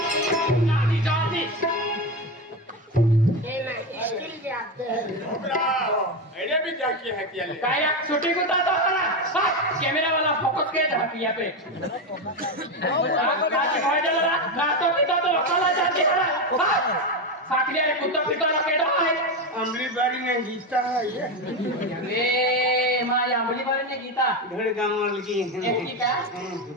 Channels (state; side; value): normal; both; correlation 0.14